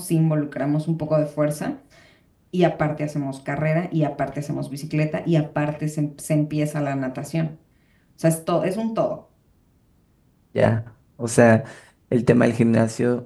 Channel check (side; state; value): both; identical; correlation 1.00